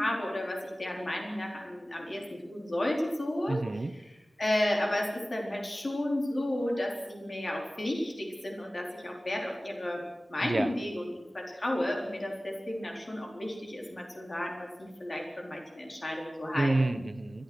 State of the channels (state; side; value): normal; both; correlation 0.97